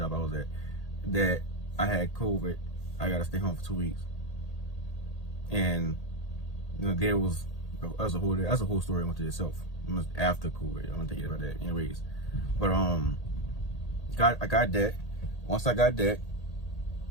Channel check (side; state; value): right; late; 1.8 ms